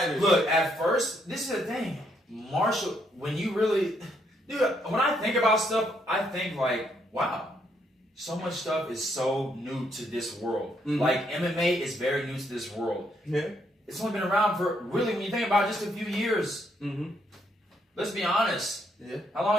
Look, at first, this is the thing. Martial, when you really... Dude, when I think about stuff, I think like, wow. So much stuff is so new to this world. Mm-hmm. Like MMA is very new to this world. Yeah. It's only been around for, really, when you think about it, just a few years. Mm-hmm. Let's be honest. Yeah. How long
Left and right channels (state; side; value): normal; both; correlation 0.73